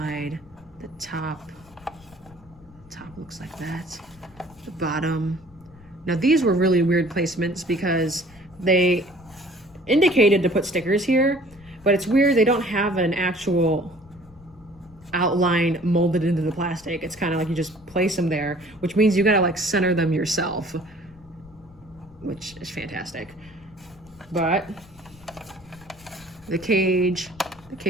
the top. The top looks like that. The bottom. Now these were really weird placements because they indicated to put stickers here, but it's weird they don't have an actual outline molded into the plastic. It's kind of like you just place them there, which means you gotta like center them yourself, which is fantastic. But the cage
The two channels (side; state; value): left; noise; rumble, 24 dB below the sound